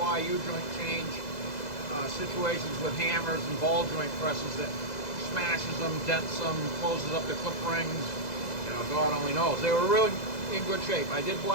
U-joint change situations with hammers and ball joint presses that smashes them, dents them, closes up the clip rings. God only knows. They were really in good shape. I did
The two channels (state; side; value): late; right; 2.0 ms